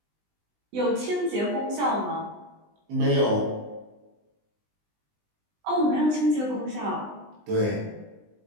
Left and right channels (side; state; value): left; late; 20 ms